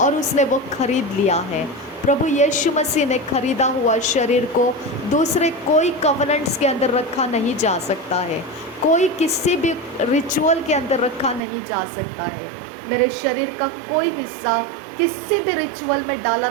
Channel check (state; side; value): drops out; left; at 11.4 s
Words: उसने वो खरीद लिया है। प्रभु यीशु मसीह ने खरीदा हुआ शरीर को दूसरे कोई कवनेंट्स के अंदर रखा नहीं जा सकता है। कोई किसी भी रिचुअल के अंदर रखा नहीं जा सकता है। मेरे शरीर का कोई हिस्सा किसी भी रिचुअल में डाला